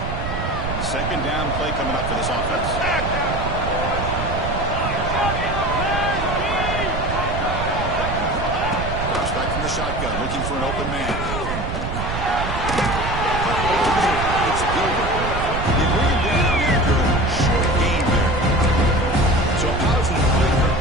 Second down play coming up for this offense. Drops back from the shotgun, looking for an open man. It's Gilbert. They bring him down after a short game there. So a positive play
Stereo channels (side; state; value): right; noise; rumble, 4 dB below the sound